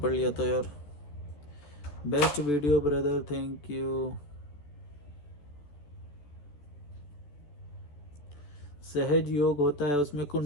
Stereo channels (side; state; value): right; late; 14 ms